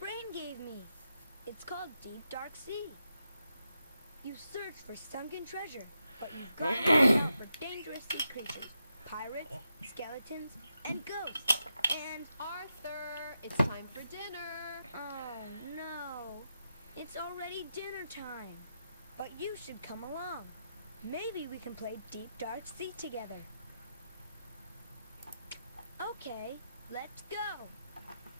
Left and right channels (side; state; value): both; inverted; correlation -0.85